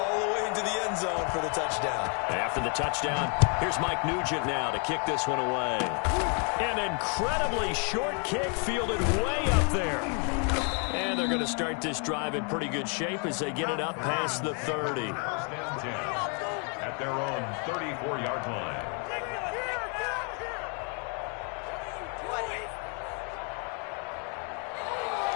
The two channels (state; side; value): quieter; right; 38.6 dB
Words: the way into the end zone for the touchdown. After the touchdown, here's Mike Nugent now to kick this one away. An incredibly short kick fielded way up there. And they're going to start this drive in pretty good shape as they get it up past the 30. First and 10 at their own 34-yard line.